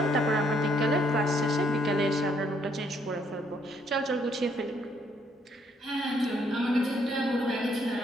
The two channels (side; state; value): both; normal; correlation 0.69